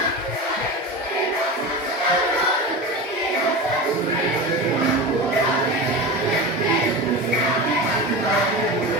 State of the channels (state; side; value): normal; both; correlation 0.26